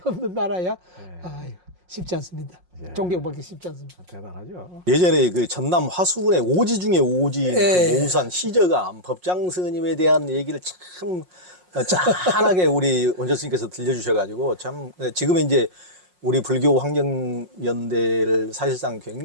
없는 나라야. 아유, 쉽지 않습니다. 존경받기 쉽지 않습니다. 대단하죠. 예전에 그 전남 화수군의 오지 중에 오지, 그 모우산 시저감 법장 스님에 대한 얘기를 참 짠하게 우리 원전 스님께서 들려주셔가지고 참 지금은 이제 우리 불교 환경연대를 사실상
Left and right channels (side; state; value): left; late; 5.5 ms